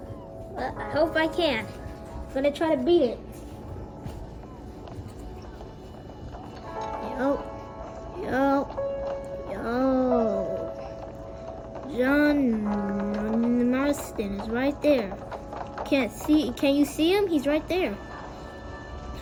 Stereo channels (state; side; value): identical; both; correlation 1.00